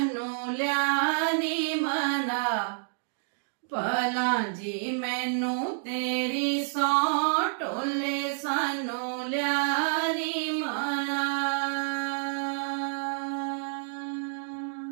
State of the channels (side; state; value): left; silent; digital silence